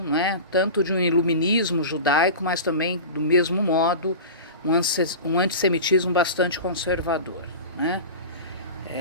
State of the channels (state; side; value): inverted; both; correlation -0.31